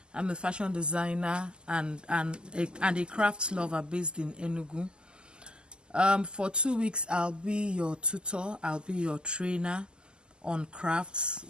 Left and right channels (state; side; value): late; left; 0.048 ms